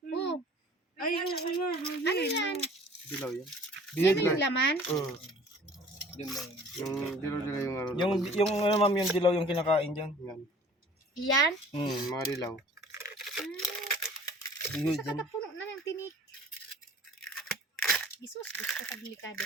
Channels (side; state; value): both; normal; correlation 0.49